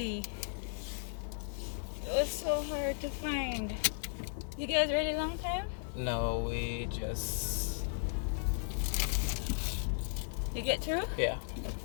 It was so hard to find. You guys ready long time? No, we just... You get through? Yeah.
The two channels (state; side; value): silent; right; digital silence